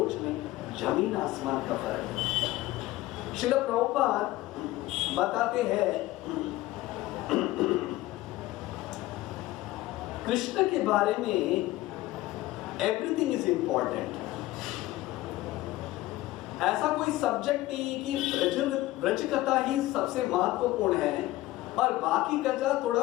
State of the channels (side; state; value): right; quieter; 17.1 dB